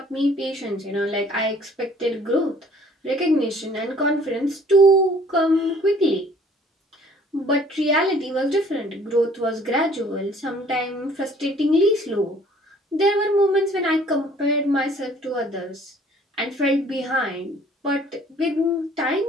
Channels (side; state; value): both; normal; correlation 0.56